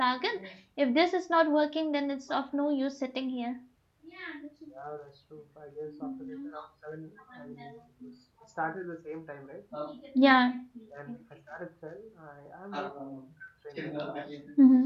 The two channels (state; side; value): identical; both; correlation 1.00